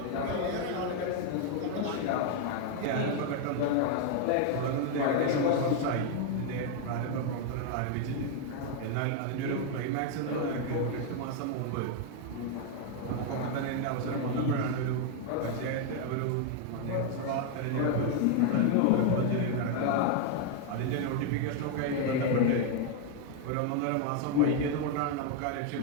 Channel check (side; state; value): both; different; correlation 0.01